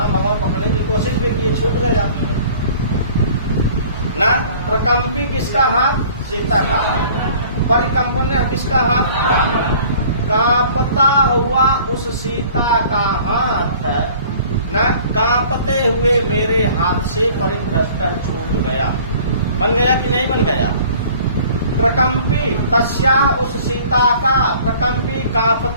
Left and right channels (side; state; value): both; inverted; correlation -0.50